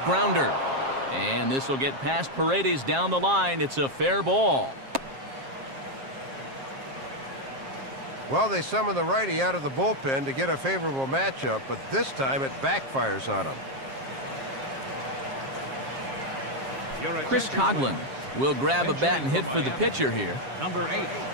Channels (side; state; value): left; late; 7.5 ms